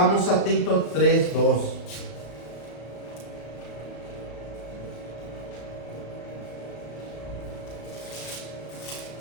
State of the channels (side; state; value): right; late; 34 ms